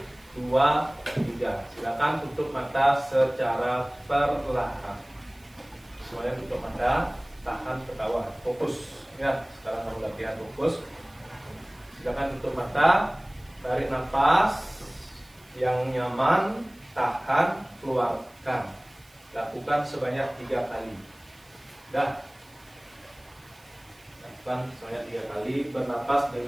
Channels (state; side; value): noise; right; hiss, 28 dB below the sound